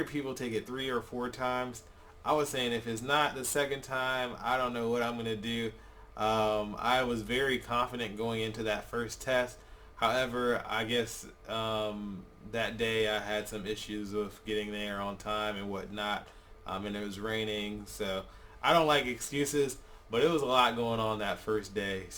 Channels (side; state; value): both; identical; correlation 1.00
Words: people take it 3 or 4 times. I was saying if it's not the second time, I don't know what I'm going to do. I was very confident going into that first test. However, I guess that day I had some issues with getting there on time and whatnot. And it was raining, so I don't like excuses, but it was a lot going on that first day.